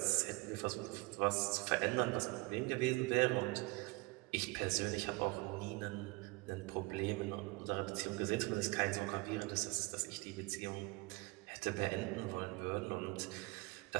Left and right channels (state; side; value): quieter; left; 24.3 dB